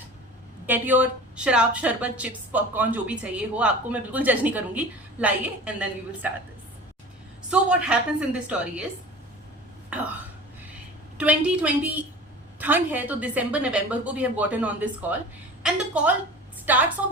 get your शराब, शरबत, chips, popcorn, जो भी चाहिए हो, आपको मैं बिल्कुल जज नहीं करूंगी, लाइए, and then we will start this. So what happens in this story is, 2020 ठंड है तो दिसंबर नवंबर को we have gotten on this call, and the call starts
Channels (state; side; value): normal; both; correlation 0.38